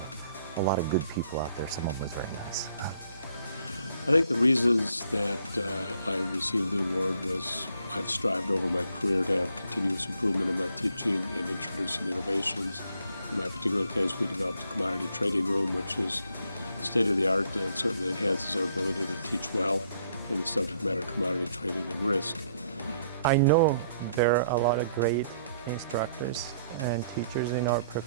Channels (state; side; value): inverted; both; correlation -0.67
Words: a lot of good people out there. Some of them was very nice. I think the reasons that I received the award was I've strived over my career to have continuous improvement in my teaching and introducing innovations. In my particular case, we developed a commodity trading room, which is state-of-the-art and certainly enhances our ability to teach well in the subject matter of commodity trading and risk. I know there are a lot of great instructors and teachers in our